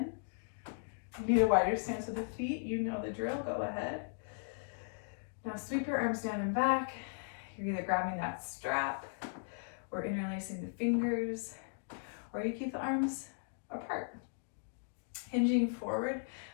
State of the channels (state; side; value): silent; right; digital silence